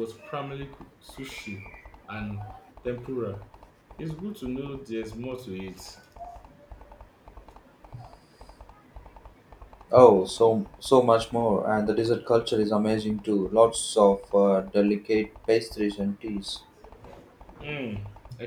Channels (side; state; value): both; identical; correlation 1.00